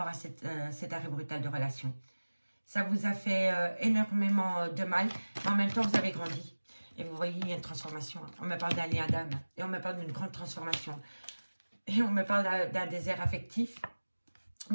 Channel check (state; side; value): inverted; both; correlation -1.00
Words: à cet arrêt brutal de relation. Ça vous a fait énormément de mal, mais en même temps, vous avez grandi. Et vous voyez, il y a une transformation. On me parle d'un lien d'âme et on me parle d'une grande transformation. Et on me parle d'un désert affectif.